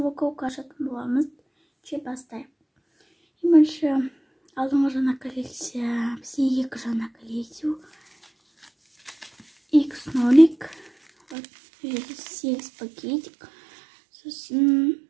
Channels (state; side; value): drops out; left; at 11.4 s